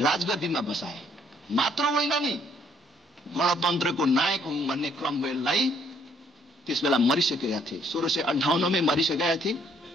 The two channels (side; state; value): both; normal; correlation 0.66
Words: बसाए। मात्र होइन नि, गणतन्त्रको नायक हुँ भन्ने क्रमवेललाई त्यस बेला मरिसकेका थिए। 1658 मै मरिसकेका थिए।